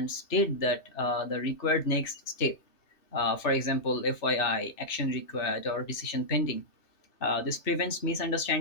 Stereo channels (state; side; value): late; right; 2.7 ms